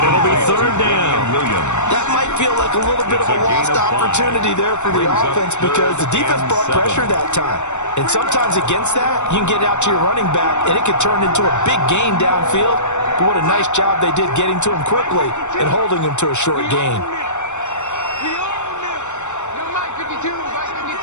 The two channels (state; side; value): late; right; 0.84 ms